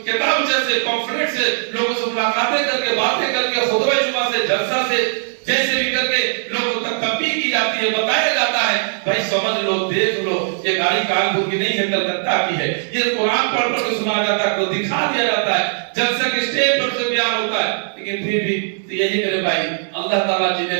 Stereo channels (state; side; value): silent; left; digital silence